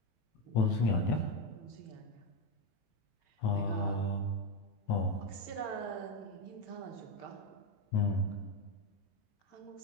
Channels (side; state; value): right; late; 18 ms